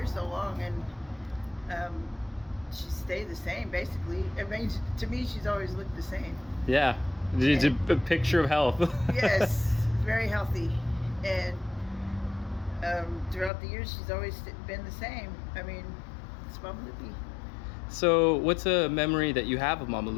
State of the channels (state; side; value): drops out; right; at 13.5 s